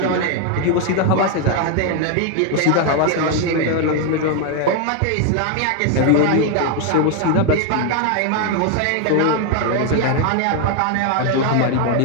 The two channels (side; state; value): both; different; correlation 0.01